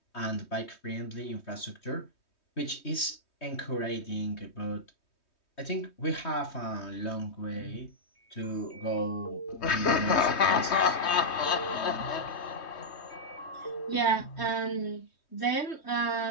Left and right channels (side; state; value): right; late; 3.2 ms